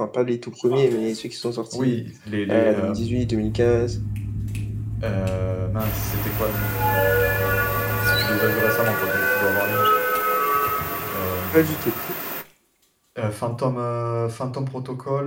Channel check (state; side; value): identical; both; correlation 1.00